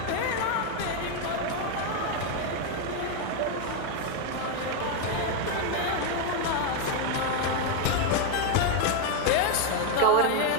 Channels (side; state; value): both; different; correlation 0.01